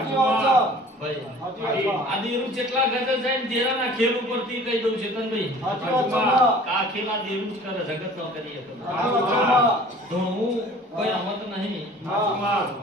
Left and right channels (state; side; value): normal; both; correlation 0.47